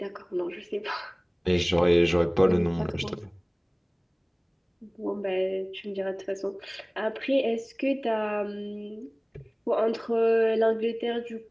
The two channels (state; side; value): identical; both; correlation 1.00